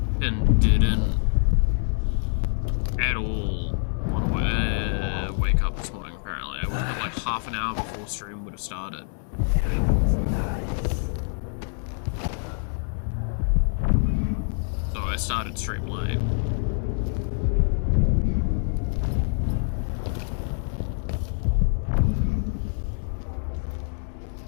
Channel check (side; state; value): right; silent; digital silence